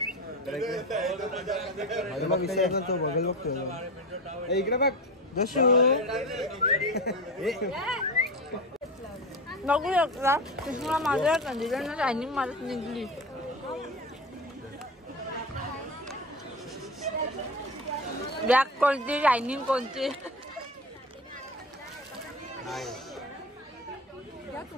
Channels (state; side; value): normal; both; correlation 0.26